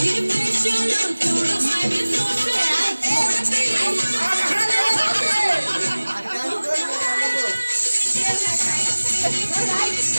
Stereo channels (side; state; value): both; inverted; correlation -1.00